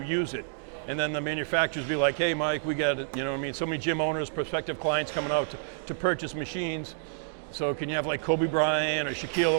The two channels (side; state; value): left; silent; digital silence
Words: use it. And then the manufacturers be like, hey Mike, we got so many gym owners, prospective clients coming out to purchase machines. So can you have like Kobe Bryant or